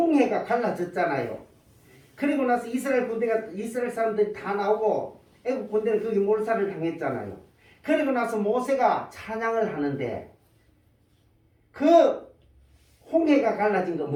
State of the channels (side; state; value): both; identical; correlation 1.00